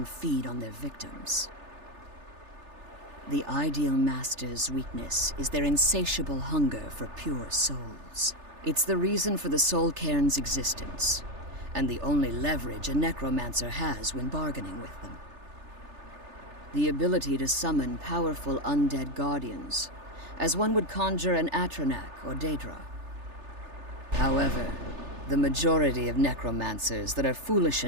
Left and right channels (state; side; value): late; left; 3.3 ms